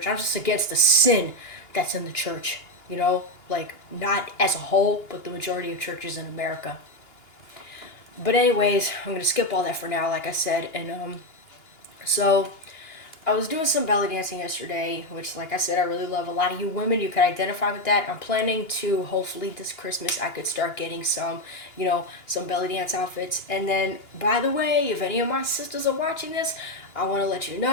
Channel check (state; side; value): late; right; 2.9 ms